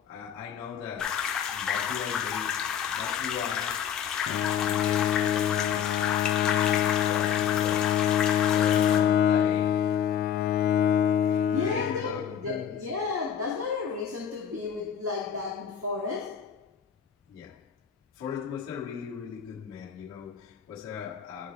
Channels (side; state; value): right; quieter; 8.8 dB